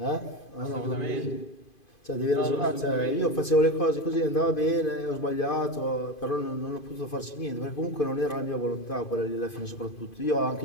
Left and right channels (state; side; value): late; right; 2.5 ms